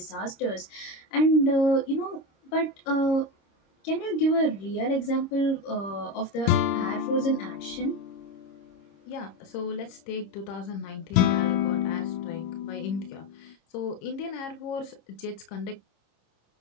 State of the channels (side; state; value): right; late; 26 ms